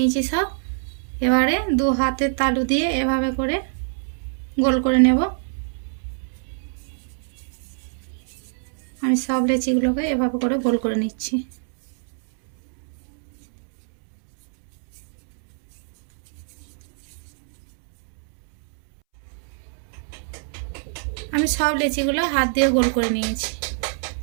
সব। এবারে 2 হাতের তালু দিয়ে এভাবে করে গোল করে নেব। আমি সব লেচিগুলোকে এভাবে করে গোল করে নিচ্ছি। আমি সব লেচিগুলো হাত দিয়ে গোল করে নিয়েছি।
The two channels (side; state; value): left; silent; 63 dB below the other